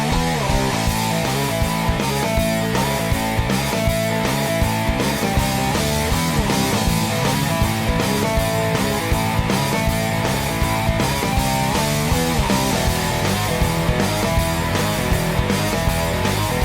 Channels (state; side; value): identical; both; correlation 1.00